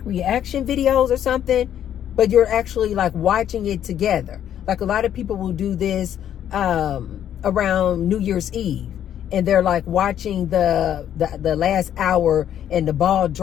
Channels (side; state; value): right; quieter; 10.3 dB